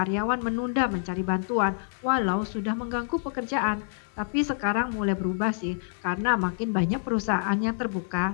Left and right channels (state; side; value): silent; right; digital silence